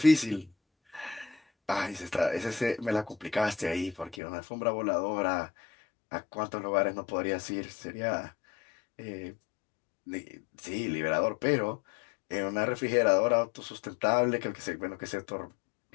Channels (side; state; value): right; drops out; at 4.2 s